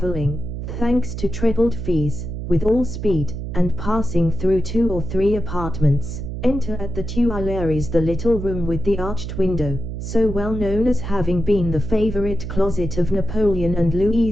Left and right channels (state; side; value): noise; right; hum, 6 dB below the sound